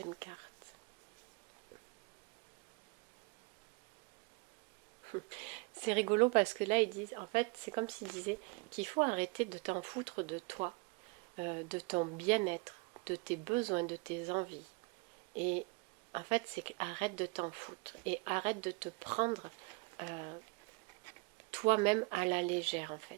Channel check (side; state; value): left; quieter; 29.8 dB